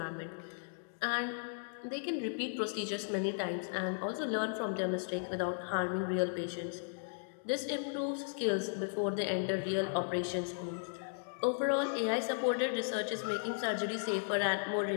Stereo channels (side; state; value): right; silent; digital silence